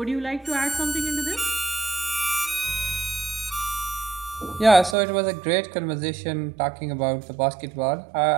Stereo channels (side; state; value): left; drops out; at 5.0 s